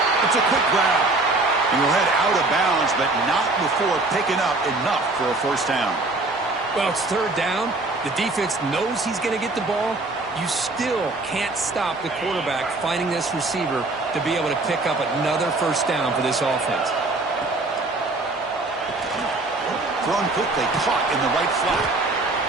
It's a quick grab. And he'll head out of bounds, but not before picking up enough for a first down. Well, it's third down. The defense knows he's going to get the ball. You still can't stop the quarterback finding this receiver to be able to pick up another first down for this offense. Thrown quickly, caught in the right flat.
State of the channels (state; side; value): quieter; left; 3.1 dB